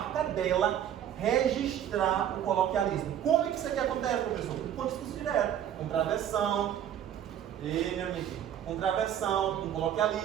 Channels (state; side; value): quieter; left; 10.2 dB